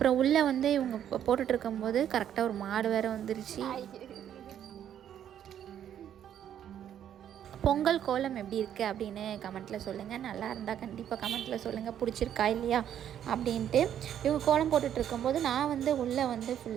உள்ளே வந்து இவங்க போட்டுட்டு இருக்கும்போது கரெக்டாக ஒரு மாடு வேறு வந்துருச்சு. பொங்கல் கோலம் எப்படி இருக்குது அப்படின்னு கமெண்ட்டில் சொல்லுங்கள். நல்லா இருந்தால் கண்டிப்பாக கமெண்ட்டில் சொல்லுங்கள், பிடிச்சிருக்கா இல்லையா அப்படின்ட்டு. இவங்க கோலம் போட்டுட்டு இருக்கும்போது நான் வந்து உள்ளே வந்து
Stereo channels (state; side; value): quieter; left; 10.0 dB